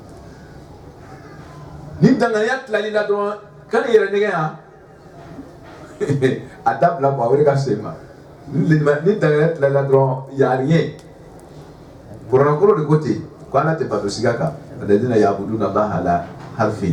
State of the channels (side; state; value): both; identical; correlation 1.00